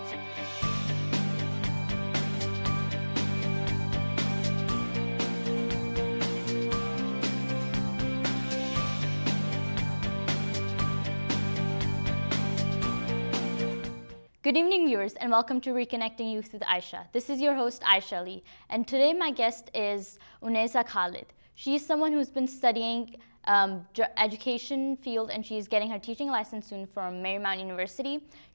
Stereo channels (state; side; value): inverted; both; correlation -1.00